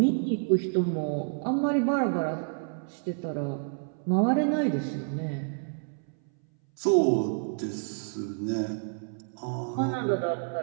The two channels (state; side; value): silent; left; 59 dB below the other